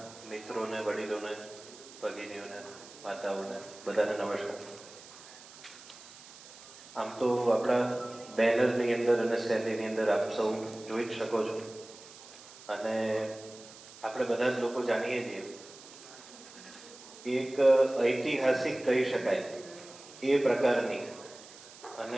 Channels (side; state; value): right; noise; hiss, 18 dB below the sound